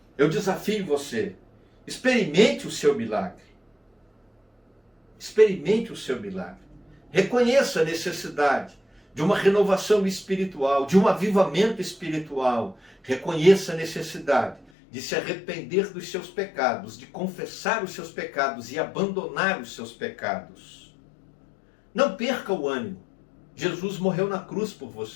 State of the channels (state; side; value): drops out; right; at 14.7 s